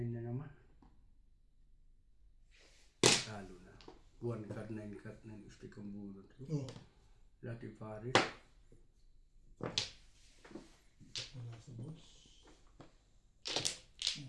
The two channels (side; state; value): both; identical; correlation 1.00